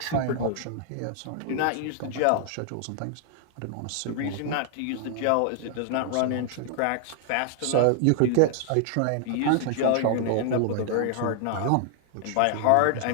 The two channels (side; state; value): both; different; correlation 0.00